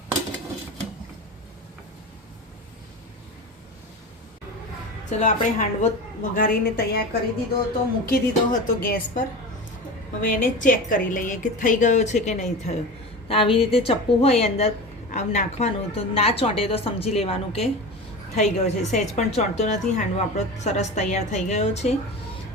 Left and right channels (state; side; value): normal; both; correlation 0.29